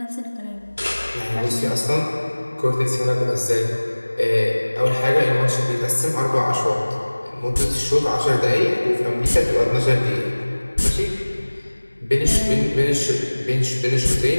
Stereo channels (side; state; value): both; inverted; correlation -1.00